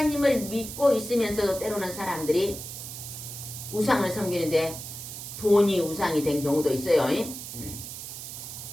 믿고 있으면서도 때로는 사람들이 우상을 섬기는데 돈이 우상이 된 경우도 있어요.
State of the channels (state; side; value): noise; right; hiss, 9 dB below the sound